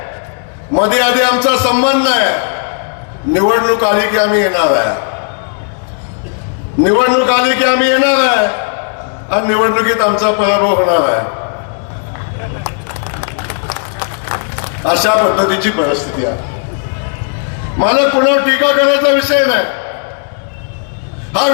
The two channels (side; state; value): right; silent; 58 dB below the other